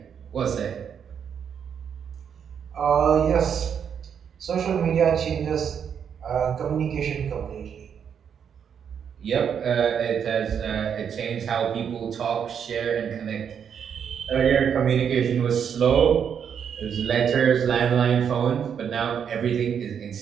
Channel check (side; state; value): left; quieter; 7.7 dB